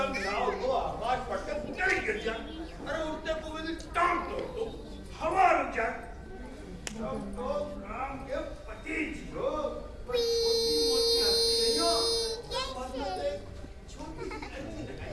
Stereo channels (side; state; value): both; identical; correlation 1.00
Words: नाव को आवाज पड़कर ऊपर ही गिर जाए, अरे उठते को टांग तोड़ दो, हवा रुक जाए। तब तो राम के पति जी हो,